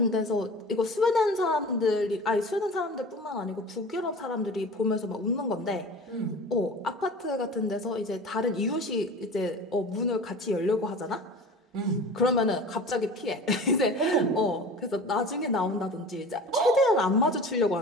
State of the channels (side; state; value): both; normal; correlation 0.37